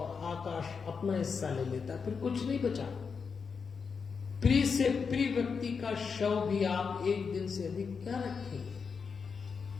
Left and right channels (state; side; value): quieter; right; 5.6 dB